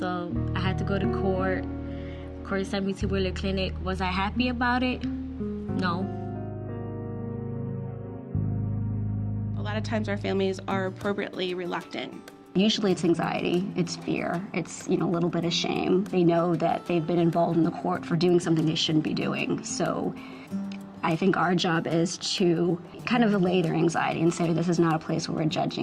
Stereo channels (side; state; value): both; identical; correlation 1.00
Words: I had to go to court. Court sent me to Wheeler Clinic. Was I happy about it? No. A lot of times our families are appropriately reluctant. Usually it's anxiety, it's fear, it's a little bit of shame. They know that they've been involved in the court for doing something they shouldn't be doing. So I think our job is to kind of allay their anxiety and say this is not a place where we're